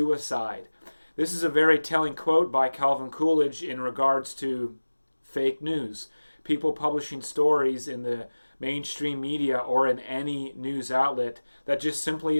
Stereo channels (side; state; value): both; inverted; correlation -1.00